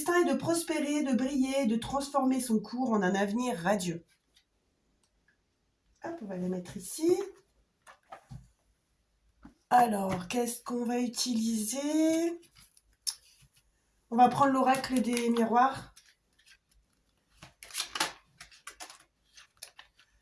est de prospérer, de briller, de transformer son cours en un avenir radieux. Hop, on va la mettre ici. Alors, qu'est-ce qu'on va utiliser? On va prendre l'oracle des miroirs.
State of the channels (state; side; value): identical; both; correlation 1.00